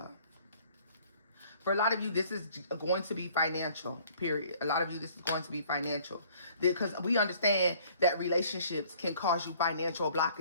for a lot of you, this is going to be financial, period. A lot of you, this is going to be financial. Because we understand that relationships can cause you financial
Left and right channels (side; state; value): both; inverted; correlation -0.57